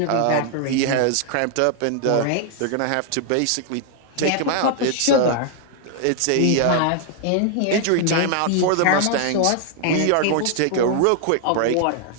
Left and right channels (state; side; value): different; both; correlation 0.00